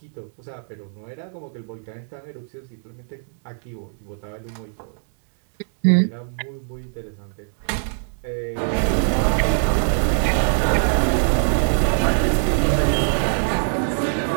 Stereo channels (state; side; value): silent; left; digital silence